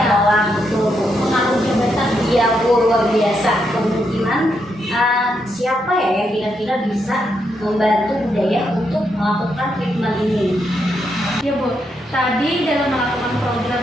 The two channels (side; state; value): both; normal; correlation 0.80